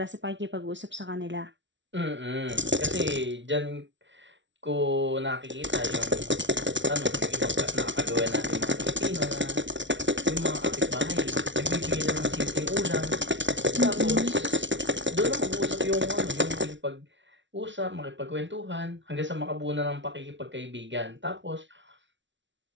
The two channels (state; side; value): late; left; 0.54 ms